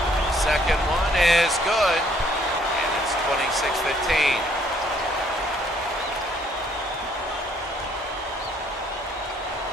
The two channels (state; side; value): normal; both; correlation 0.64